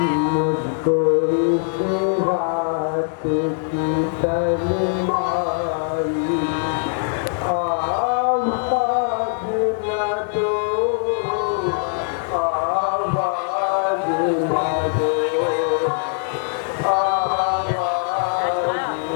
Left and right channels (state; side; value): silent; right; 65 dB below the other